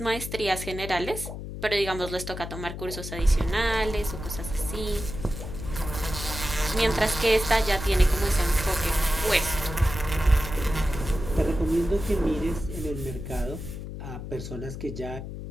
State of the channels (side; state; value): left; noise; hum, 8 dB below the sound